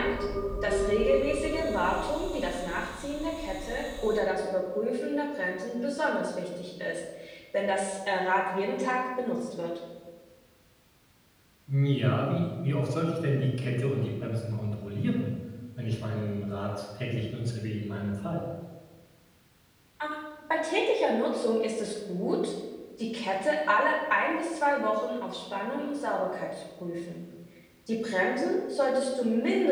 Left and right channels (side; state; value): both; identical; correlation 1.00